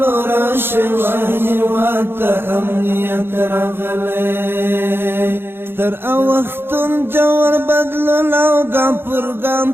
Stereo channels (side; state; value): left; late; 0.11 ms